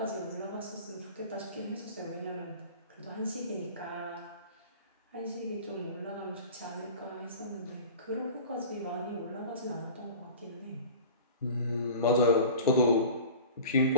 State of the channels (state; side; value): inverted; both; correlation -0.38